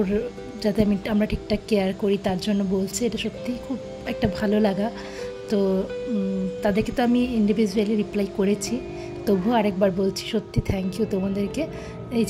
যাতে আমরা ঠিকঠাক কেয়ার করি তার জন্য বলছে। এটা সত্যিই খুব একটা ভালো লাগা। তো তাদেরকে তো আমি ইন্ডিভিজুয়ালি রিপ্লাই করেছি, তবুও আরেকবার বলছি সত্যি থ্যাংক ইউ তোমাদেরকে। এই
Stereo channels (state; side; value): identical; both; correlation 1.00